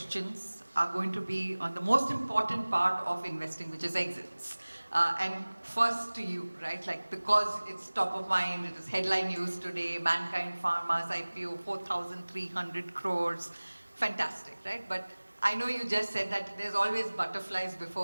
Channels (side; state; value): both; inverted; correlation -1.00